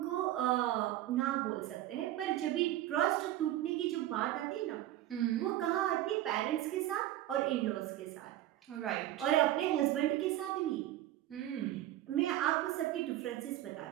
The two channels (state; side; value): quieter; left; 13.9 dB